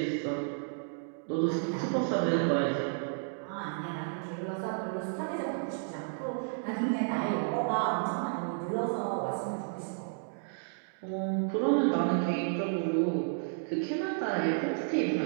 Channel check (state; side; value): silent; left; digital silence